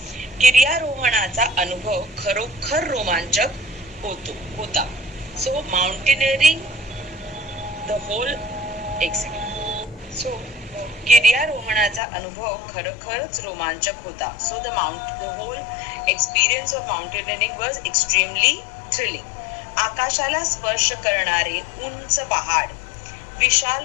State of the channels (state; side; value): drops out; right; at 12.0 s